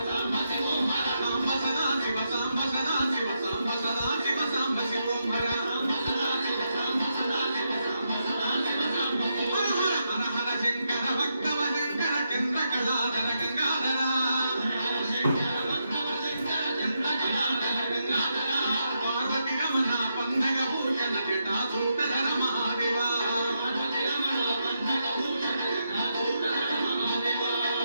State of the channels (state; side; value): inverted; both; correlation -0.82